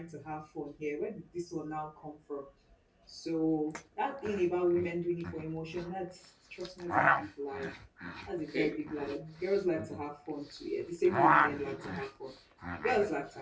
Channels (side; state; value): both; identical; correlation 1.00